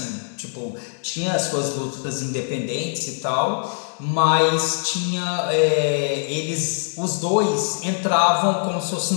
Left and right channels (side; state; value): right; silent; 64 dB below the other